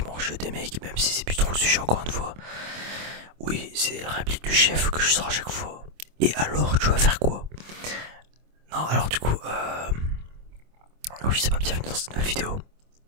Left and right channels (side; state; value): left; late; 25 ms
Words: mangent des mecs, même si c'est plus trop le sujet encore une fois. Oui, c'est la réplique du chef que je sors à chaque fois. Et alors, tu vas faire quoi? Non, alors du coup, je sais pas, bienvenue dans cette nouvelle vidéo.